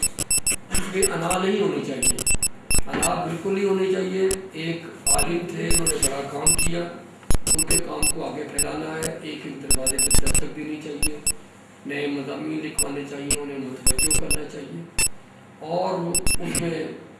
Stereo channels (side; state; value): both; identical; correlation 1.00